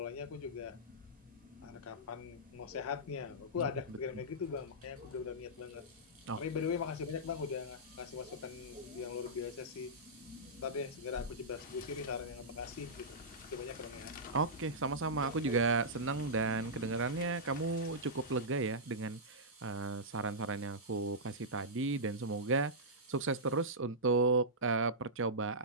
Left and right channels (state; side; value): normal; both; correlation -0.14